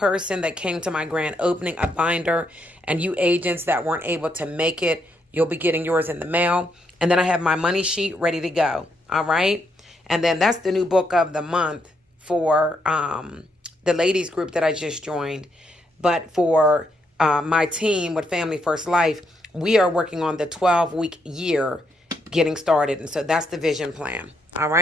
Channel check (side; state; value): both; normal; correlation 0.77